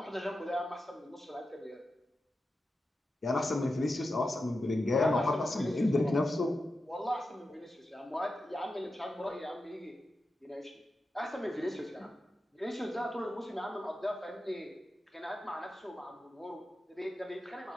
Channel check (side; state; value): both; normal; correlation 0.90